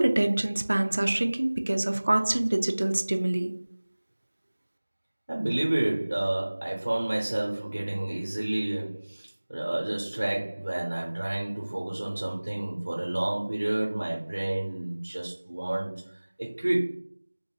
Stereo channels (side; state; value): both; inverted; correlation -1.00